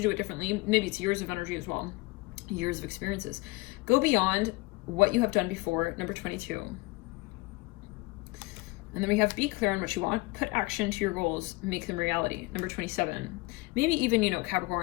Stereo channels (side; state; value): right; quieter; 23.2 dB